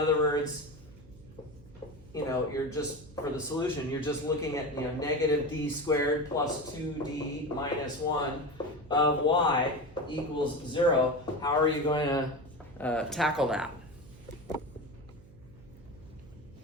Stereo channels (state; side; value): noise; right; hum, 22 dB below the sound